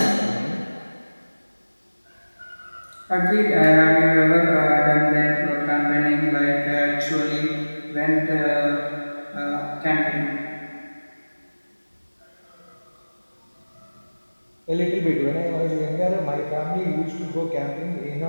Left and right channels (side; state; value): both; inverted; correlation -1.00